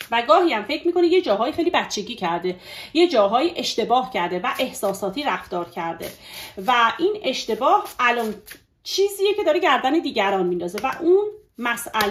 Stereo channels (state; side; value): identical; both; correlation 1.00